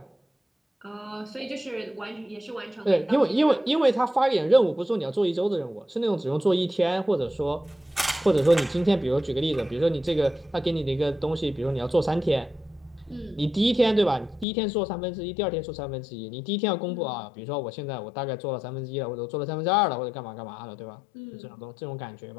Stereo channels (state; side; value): drops out; right; at 14.5 s